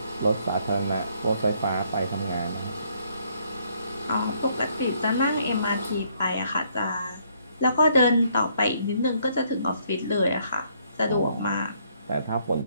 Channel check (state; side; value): inverted; both; correlation -0.68